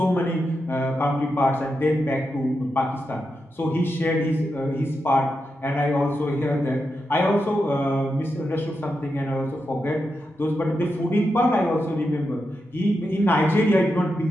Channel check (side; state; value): both; normal; correlation 0.87